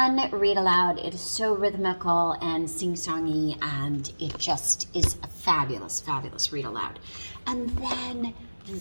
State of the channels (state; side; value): inverted; both; correlation -1.00